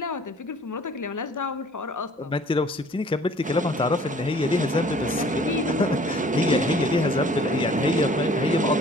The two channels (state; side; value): normal; both; correlation 0.53